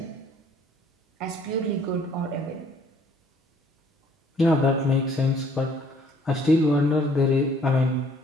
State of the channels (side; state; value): both; normal; correlation 0.60